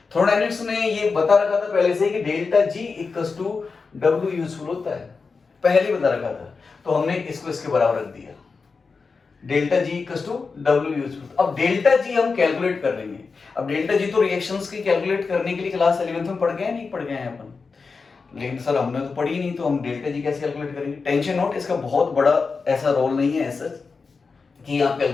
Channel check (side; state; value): right; quieter; 4.7 dB